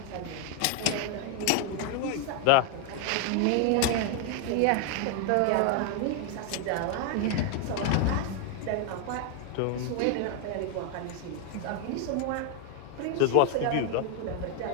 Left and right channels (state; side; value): different; both; correlation 0.00